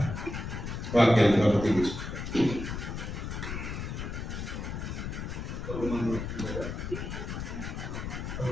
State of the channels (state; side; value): noise; left; rumble, 5 dB below the sound